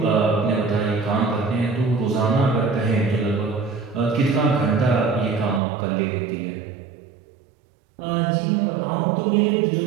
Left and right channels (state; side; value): drops out; left; at 5.6 s